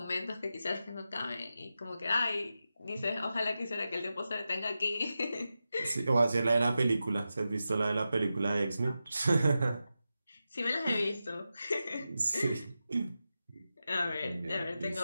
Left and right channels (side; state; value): both; inverted; correlation -0.91